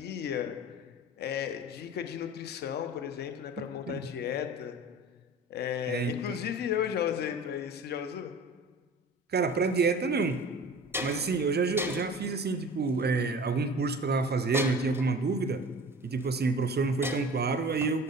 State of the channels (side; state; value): both; normal; correlation 0.40